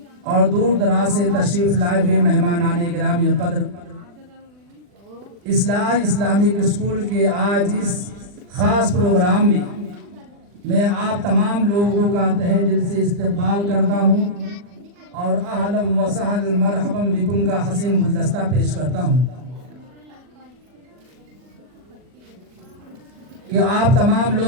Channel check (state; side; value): late; left; 40 ms